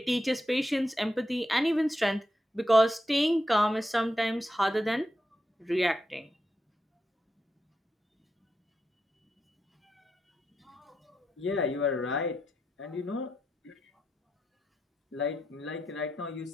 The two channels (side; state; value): both; normal; correlation 0.85